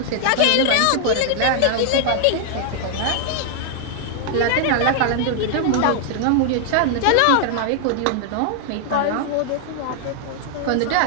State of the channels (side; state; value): both; different; correlation 0.00